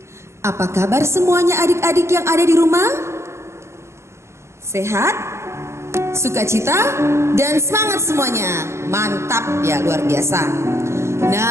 Apa kabar semuanya adik-adik yang ada di rumah? Sehat? Sukacita? Dan semangat semuanya. Mantap ya, luar biasa.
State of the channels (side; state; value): left; late; 0.13 ms